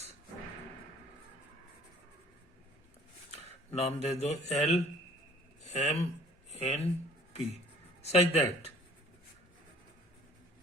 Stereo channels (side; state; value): both; normal; correlation 0.56